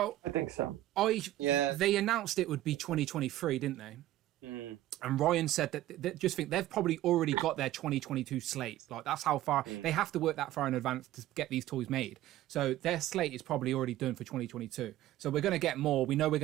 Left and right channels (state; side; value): quieter; left; 14.6 dB